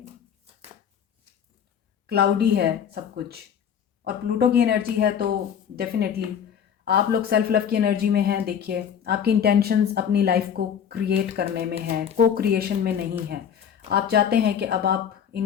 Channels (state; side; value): quieter; right; 8.2 dB